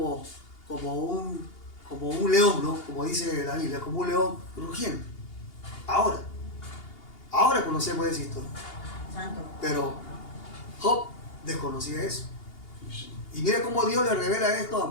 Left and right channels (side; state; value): right; late; 2.8 ms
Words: un león, ¿no? Como dice la Biblia, como un león rugiendo. Ahora conocemos esa historia. Pero Job desconocía eso. Y mire cómo Dios le revela esto a